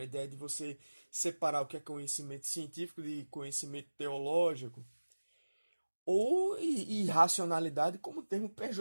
ideia de você separar o que é conhecimento científico de conhecimento teológico. Ou irracionalidade como termo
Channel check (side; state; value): both; inverted; correlation -1.00